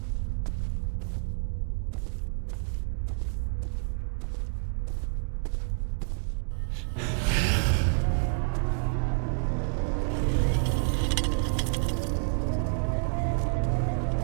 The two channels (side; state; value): left; silent; 59 dB below the other